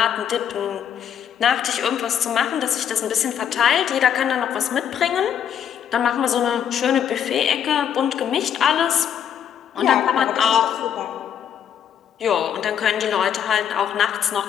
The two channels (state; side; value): quieter; right; 8.9 dB